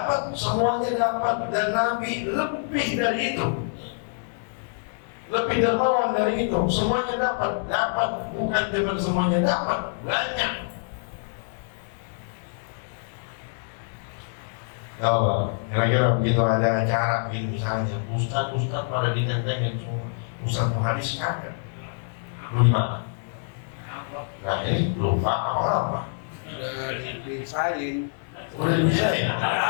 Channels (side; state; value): right; silent; 61 dB below the other